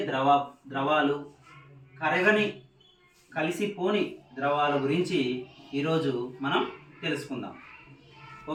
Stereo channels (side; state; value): both; identical; correlation 1.00